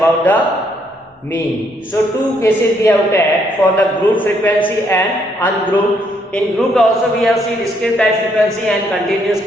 the mean. So two cases we have taken for the group frequency and ungrouped. In group also we have seen discrete time frequency and continuous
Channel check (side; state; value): both; normal; correlation 0.71